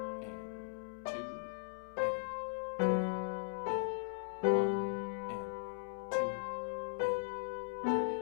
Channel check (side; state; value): right; silent; 52 dB below the other